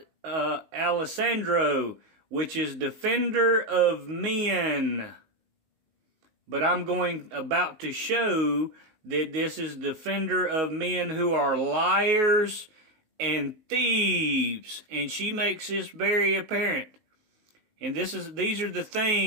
Alessandro, which is defender of men. But I'm about to show that this is defender of men who are liars and thieves. And she makes this very apparent. And these are the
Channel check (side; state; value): left; late; 19 ms